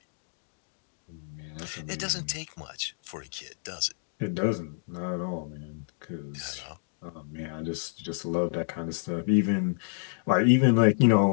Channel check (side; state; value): right; silent; digital silence